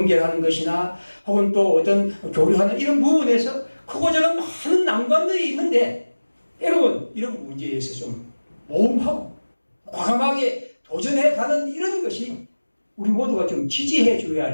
것이나 혹은 또 어떤 교류하는 이런 부분에서 크고 작은 많은 난관들이 있는데 여러분 이런 문제에서 좀 모험하고 과감하게 도전해가는 이런 것이 우리 모두가 좀 지지해 줘야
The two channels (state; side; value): inverted; both; correlation -1.00